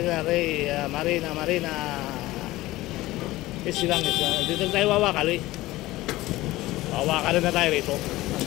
Marina. Easy lang. Dito tayo wawakal eh. Wawakalan na tayo rito.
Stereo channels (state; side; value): quieter; right; 17.9 dB